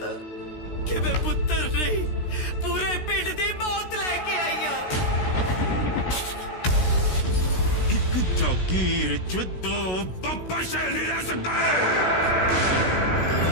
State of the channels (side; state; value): right; late; 16 ms